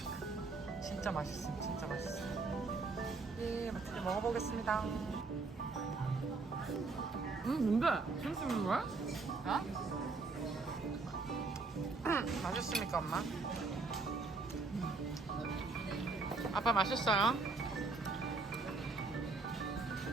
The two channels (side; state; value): left; quieter; 3.9 dB